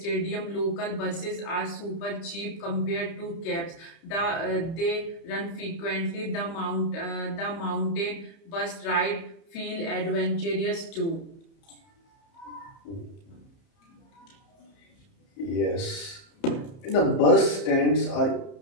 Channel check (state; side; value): late; right; 30 ms